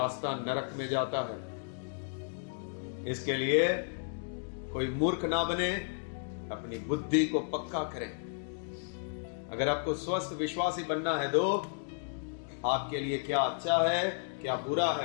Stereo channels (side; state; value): right; silent; digital silence